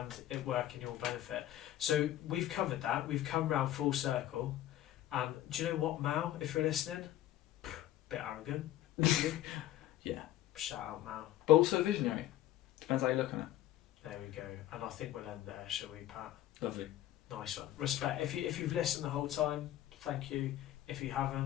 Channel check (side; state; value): right; quieter; 13.4 dB